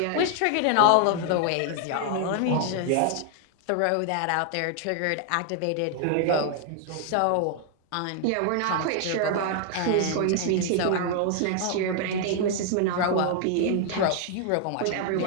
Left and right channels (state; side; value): different; both; correlation 0.00